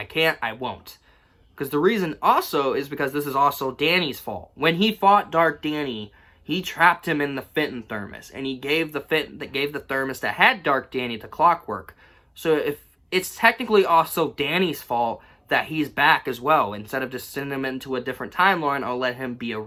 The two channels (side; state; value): both; identical; correlation 1.00